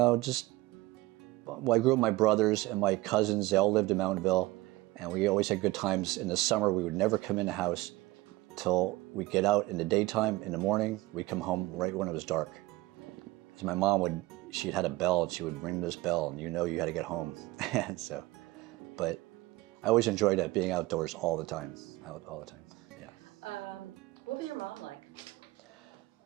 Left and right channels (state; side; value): quieter; left; 19.0 dB